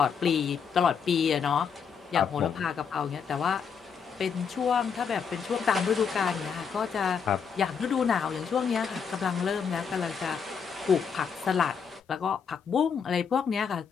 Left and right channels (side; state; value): right; quieter; 6.6 dB